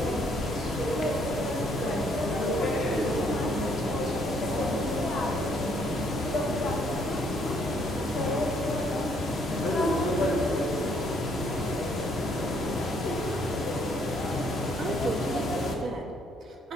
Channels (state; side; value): normal; both; correlation 0.68